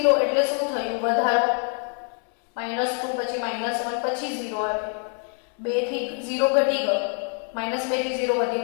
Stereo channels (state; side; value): quieter; right; 38.0 dB